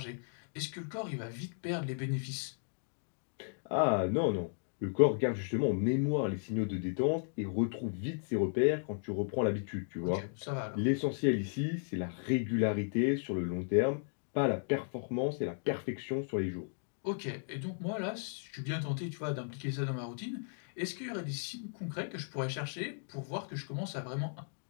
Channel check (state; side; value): silent; right; digital silence